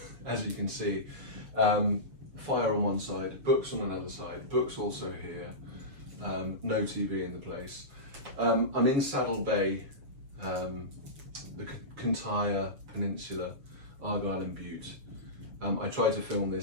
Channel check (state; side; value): late; left; 7.3 ms